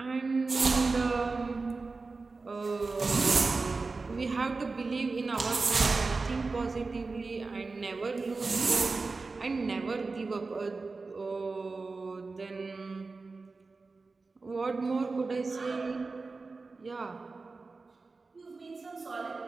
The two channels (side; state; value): left; quieter; 3.9 dB